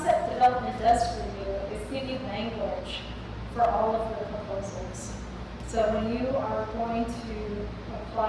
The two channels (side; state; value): both; identical; correlation 1.00